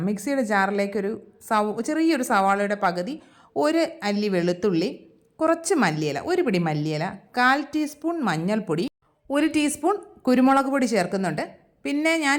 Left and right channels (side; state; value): both; identical; correlation 1.00